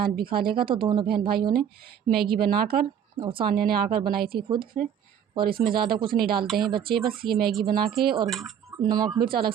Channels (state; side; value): quieter; left; 8.7 dB